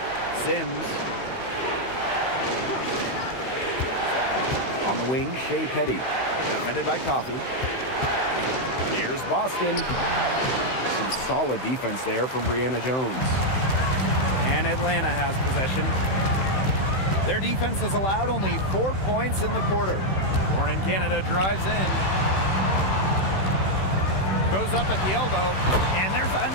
Sims. On the wing, Shea Petty. Defended by Coffey. Here's Boston. Some solid defense there from Brianna Jones. And Atlanta has possession. Their defense has allowed only 4 points in the quarter. Born in Canada drives in. Goes up at the elbow. And there's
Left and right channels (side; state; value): right; late; 16 ms